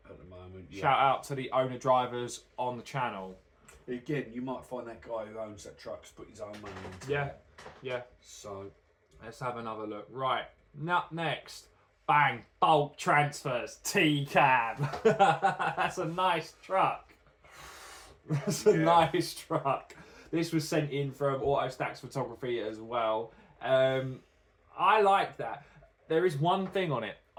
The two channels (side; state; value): both; identical; correlation 1.00